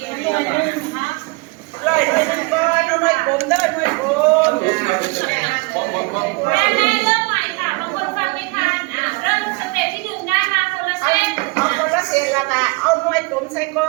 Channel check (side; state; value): left; quieter; 26.8 dB